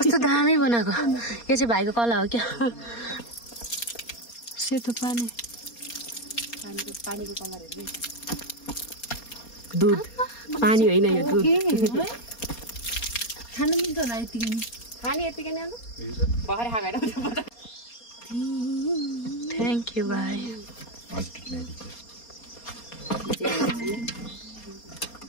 दामी बनाएको। यो चाहिँ भाइको कला हो क्या। सेतो पानीको कलर हेर्नु। दुध पानी होइन यो दुध। खानु मिल्छ होला यतिकै। खाने यतिकै नै भर्खर खाएर। थ्याङ्क यू भाइ।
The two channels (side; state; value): right; late; 4.3 ms